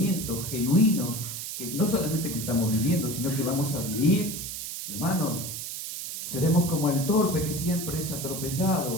genuinos, que no solamente que estamos viviendo, sino que vamos a vivir, hermanos, seremos como el torpe que siempre es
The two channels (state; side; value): noise; right; hiss, 6 dB below the sound